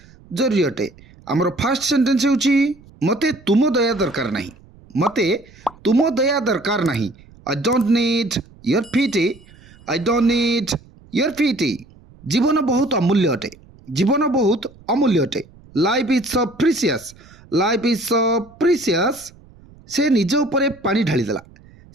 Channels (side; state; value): right; noise; rumble, 25 dB below the sound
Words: जरूरी अटे। हमर फर्स्ट सेंटेंस होची मते तुम दया दरकार नहीं। मते तुम दया दरकार नहीं। I don't need your pity. I don't need your pity. जीवन बहुत अमूल्य अटे। जीवन बहुत अमूल्य अटे। Life is so precious. Life is so precious. से निज उपरे पानी ढाली देला।